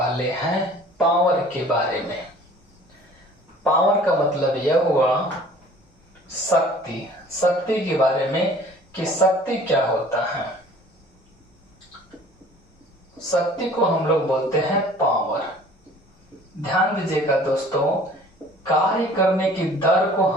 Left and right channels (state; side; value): normal; both; correlation 0.49